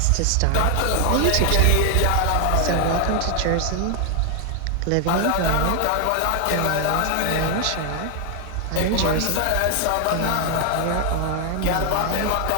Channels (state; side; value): different; both; correlation 0.00